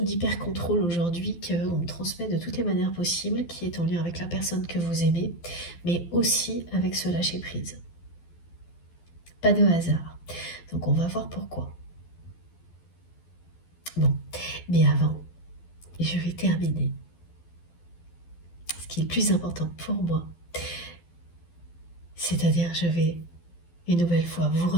d'hyper-contrôle aujourd'hui qu'on me transmet de toutes les manières possibles, qui est en lien avec la personne que vous aimez, mais aussi avec ce lâcher prise. Pas de hasard. Donc on va voir pourquoi. Bon, mais avant, je vais terminer. Ce qui est le plus important pour moi, c'est-à-dire je vais une nouvelle fois vous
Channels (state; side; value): late; right; 12 ms